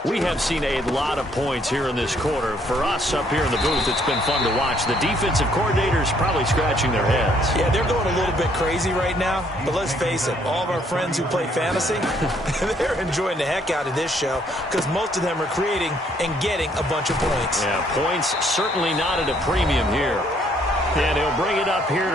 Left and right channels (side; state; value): both; normal; correlation 0.66